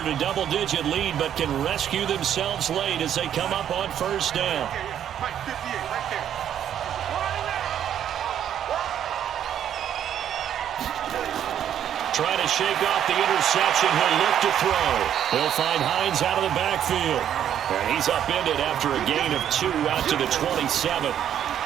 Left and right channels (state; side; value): quieter; left; 9.9 dB